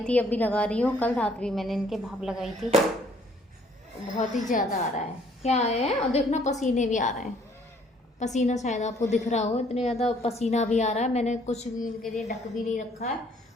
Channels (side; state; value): both; normal; correlation 0.62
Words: थी, अब भी लगा रही हूँ, कल रात भी मैंने इनके भाप लगाई थी। बहुत ही ज़्यादा आ रहा है, क्या है, और देखना पसीने भी आ रहे हैं, पसीना शायद आपको दिख रहा हो, इतने ज़्यादा पसीना भी आ रहा है। मैंने कुछ भी इनके लिए ढक भी नहीं रखा है,